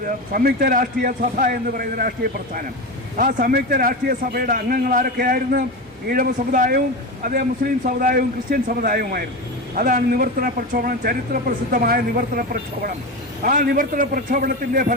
സംയുക്ത രാഷ്ട്രീയ സഭ എന്ന് പറയുന്ന രാഷ്ട്രീയ പ്രസ്ഥാനം. ആ സംയുക്ത രാഷ്ട്രീയ സഭയുടെ അംഗങ്ങൾ ആരൊക്കെയായിരുന്നു? ഈഴവ സമുദായവും അതേ മുസ്ലിം സമുദായവും ക്രിസ്ത്യൻ സമുദായവുമായിരുന്നു. അതാണ് നിവർത്തന പ്രക്ഷോഭണം, ചരിത്ര പ്രസിദ്ധമായ നിവർത്തന പ്രക്ഷോഭണം. ആ നിവർത്തന പ്രക്ഷോഭണത്തിൻ്റെ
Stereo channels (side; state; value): both; normal; correlation 0.21